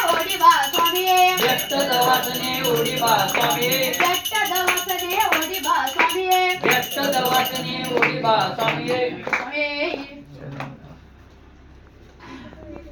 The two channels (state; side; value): identical; both; correlation 1.00